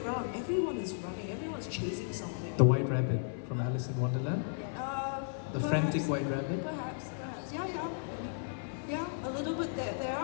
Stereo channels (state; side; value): silent; right; digital silence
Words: everyone is running, everyone's chasing something. The White Rabbit from Alice in Wonderland? The frantic White Rabbit? Perhaps. Yeah, a little bit. There